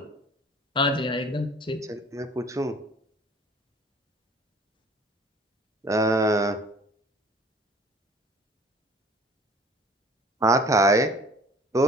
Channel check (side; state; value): both; normal; correlation 0.49